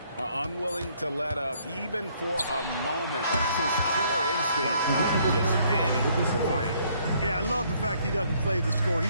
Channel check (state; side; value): inverted; both; correlation -0.65